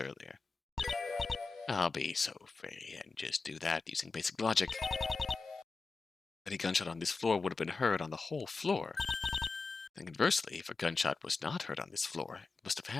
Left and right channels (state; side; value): quieter; right; 4.1 dB